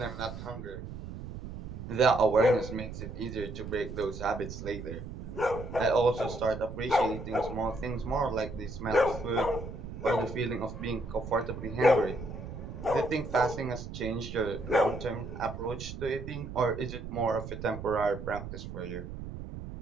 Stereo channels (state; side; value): noise; right; rumble, 9 dB below the sound